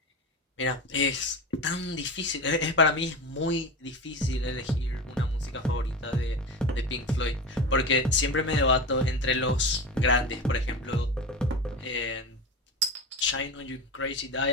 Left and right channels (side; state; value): both; normal; correlation 0.25